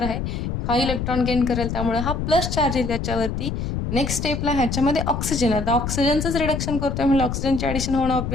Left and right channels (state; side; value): noise; left; rumble, 3 dB below the sound